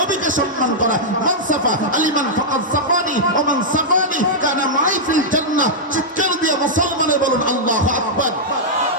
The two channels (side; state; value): both; normal; correlation -0.08